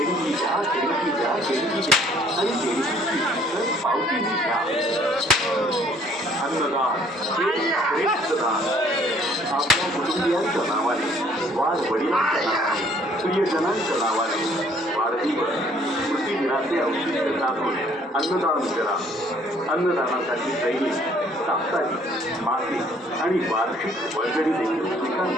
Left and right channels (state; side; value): normal; both; correlation 0.60